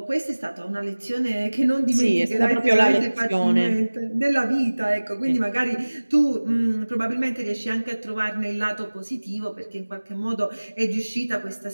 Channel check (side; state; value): both; inverted; correlation -1.00